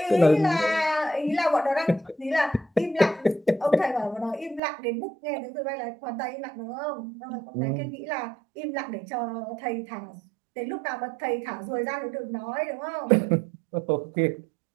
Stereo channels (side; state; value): left; drops out; at 4.6 s